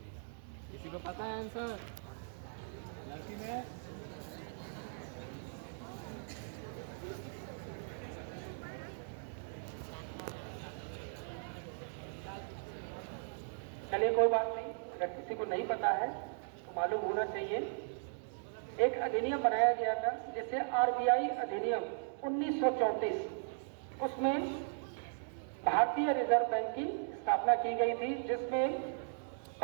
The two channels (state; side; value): silent; left; digital silence